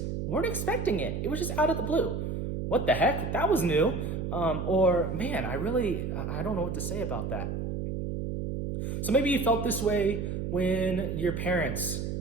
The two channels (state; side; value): noise; right; hum, 3 dB below the sound